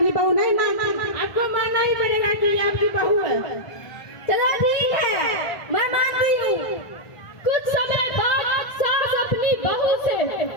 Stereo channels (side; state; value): right; late; 1.5 ms